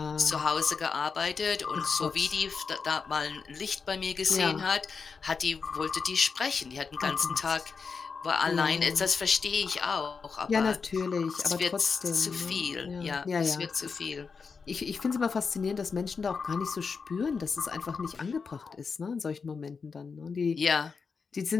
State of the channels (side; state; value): right; quieter; 5.3 dB